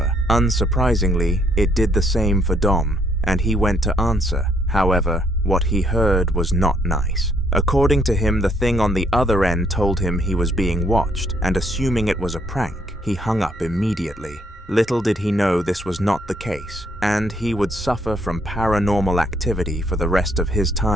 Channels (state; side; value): normal; both; correlation 0.69